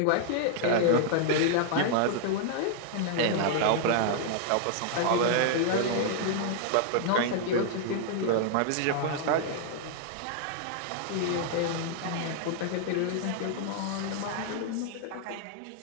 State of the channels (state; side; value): different; both; correlation 0.00